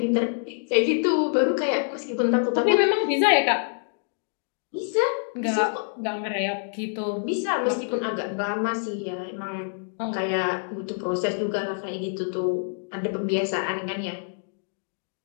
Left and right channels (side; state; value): right; silent; digital silence